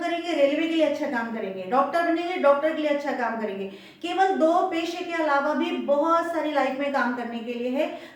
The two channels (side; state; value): both; identical; correlation 1.00